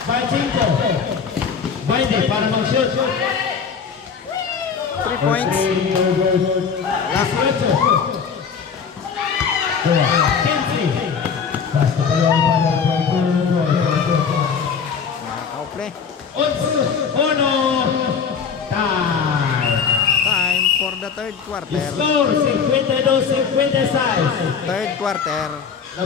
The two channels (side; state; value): right; quieter; 6.3 dB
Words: 5 para mag-shoot. 3 points. Last 8. 15. Pass to Padul. Nakaka-play. Uno. Time. Time for the sa third quarter. Score 52-56. Third quarter.